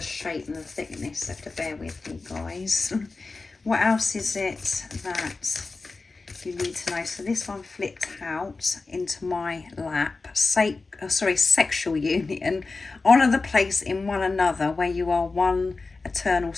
shape and the thickness, so you have to bear with me, guys. What else is it that you need to know? So this one flipped out into my lap. Sexual union. Honour the place in one another where you are one eternal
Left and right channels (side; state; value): right; quieter; 3.8 dB